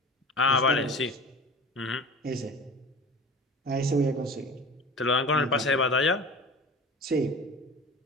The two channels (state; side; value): normal; both; correlation 0.37